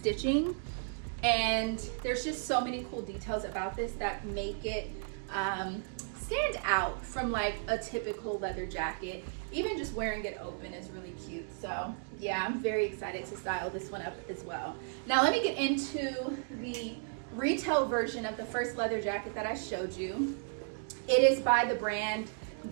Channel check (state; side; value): silent; left; digital silence